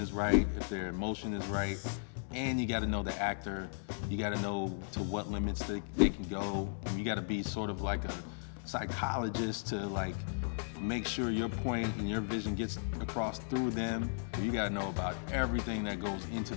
right, if their emotion is right. And you got to know the actor. You got to know to what limits they can go. And you got to be sort of like a psychologist to like make sure your point and your vision gets across through them. You got to know about everything that goes into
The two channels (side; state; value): right; silent; digital silence